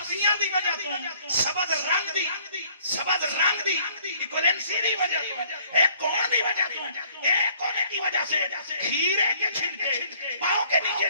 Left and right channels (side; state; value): both; inverted; correlation -0.59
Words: دی وجہ تو سبد رنگ دی ایکویلنسی دی وجہ تو ایک کون دی وجہ تو ایک کونے کی وجہ سے کھیرے کے چھلکے پاؤں کے نیچے